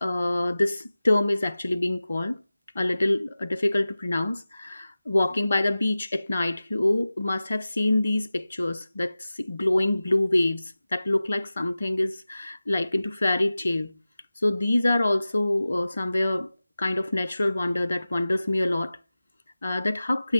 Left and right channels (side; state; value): both; inverted; correlation -0.96